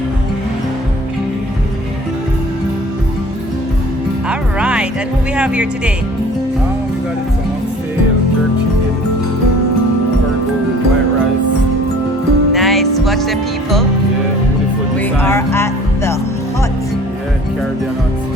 All right, and who we have here today? We got it some oxtail, jerk chicken, burger with white rice. Nice, watch the people. Yeah, beautiful We are design. at the Hut, Yeah, Caribbean hut.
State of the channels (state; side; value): normal; both; correlation 0.49